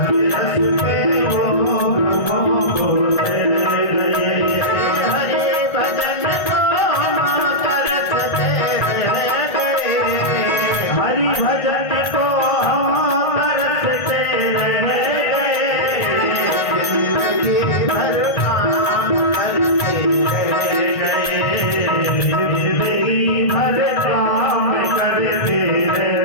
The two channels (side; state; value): right; late; 1.8 ms